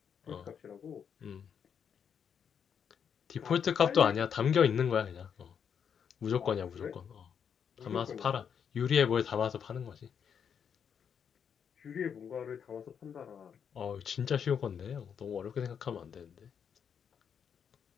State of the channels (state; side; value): quieter; right; 7.5 dB